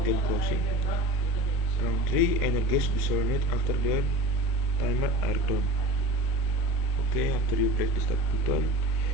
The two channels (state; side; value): late; left; 37 ms